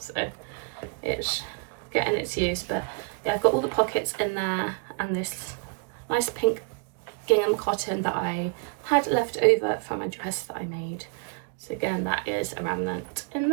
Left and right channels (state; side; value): quieter; left; 36.8 dB